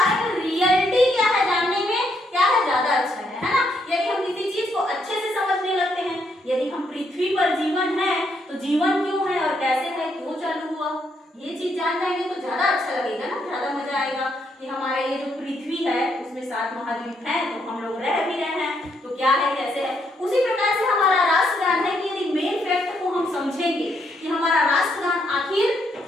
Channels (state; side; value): normal; both; correlation 0.75